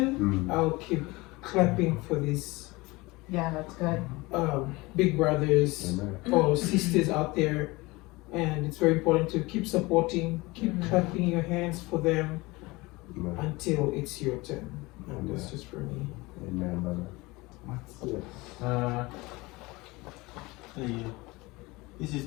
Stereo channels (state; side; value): quieter; right; 22.7 dB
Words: I'll keep clapping for these Yeah, that's good. big brothers Amen. or sisters out there, and it's very important to keep supporting, keep clapping your hands for them Amen. until it's your turn. And that's just for me. Amen, brother. Yeah. This is